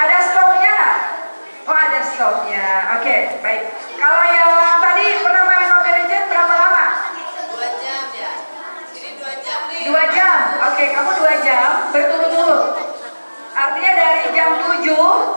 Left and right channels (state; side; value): inverted; both; correlation -1.00